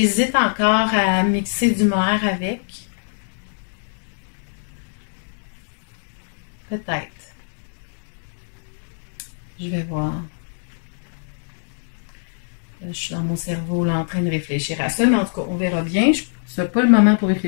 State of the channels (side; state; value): right; silent; digital silence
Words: encore à mixer du mohair avec. Peut-être. Je vais voir. Je suis dans mon cerveau là, en train de réfléchir à ça, mais en tout cas, on verra bien. Ce n'est pas le moment pour